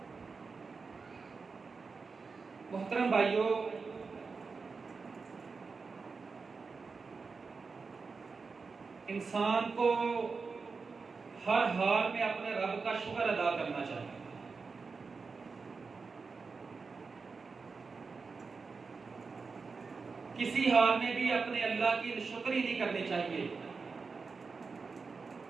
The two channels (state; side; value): quieter; left; 4.7 dB